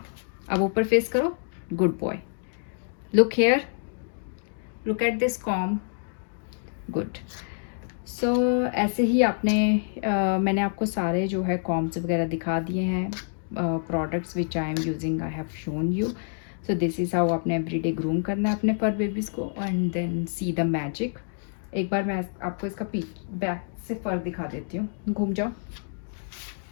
अब ऊपर फेस करो, good boy. Look hair, look at this comb, good. So ऐसे ही आपने मैंने आपको सारे जो है कॉम्स वगैरह दिखा दिए हैं, products which I am using, I have shown you. So this is how आपने एवरीडे ग्रूम करना है अपने फर बेबीज़ को, and then see the magic. एक बार मैं आपको इसका बैक से फर दिखा देती हूँ। घूम जाओ,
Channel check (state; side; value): silent; right; digital silence